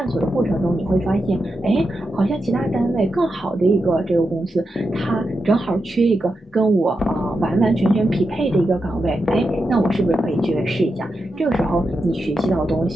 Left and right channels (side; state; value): both; normal; correlation 0.88